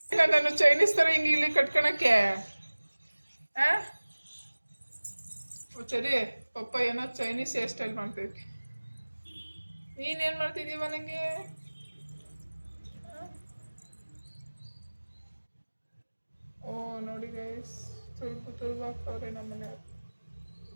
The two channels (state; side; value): inverted; both; correlation -1.00